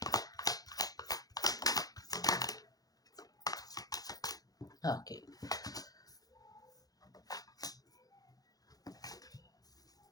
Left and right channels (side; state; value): right; late; 0.18 ms